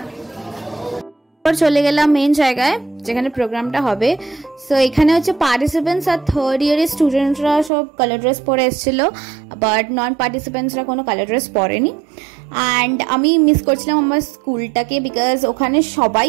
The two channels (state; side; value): drops out; left; at 7.7 s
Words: চলে গেলাম মেন জায়গায় যেখানে প্রোগ্রামটা হবে। সো এখানে হচ্ছে পার্টিসিপেন্টস আর থার্ড ইয়ারের স্টুডেন্টরা সব কালার ড্রেস পরে এসেছিল, বাট নন পার্টিসিপেন্টসরা কোনো কালার ড্রেস পরেনি। অ্যান্ড আমি মিস করছিলাম আমার স্কুলটাকে, বিকজ ওখানে সবাই